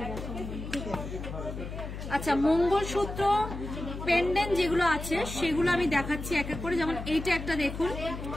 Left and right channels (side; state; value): left; noise; hum, 8 dB below the sound